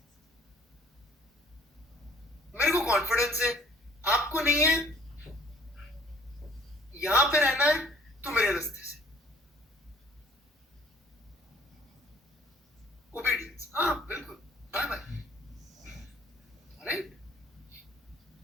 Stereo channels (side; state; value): both; normal; correlation 0.56